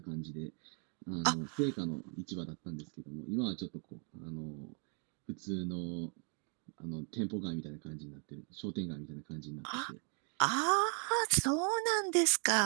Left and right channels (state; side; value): quieter; left; 39.7 dB